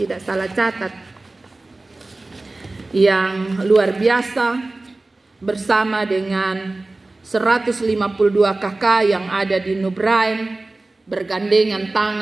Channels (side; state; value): left; quieter; 3.1 dB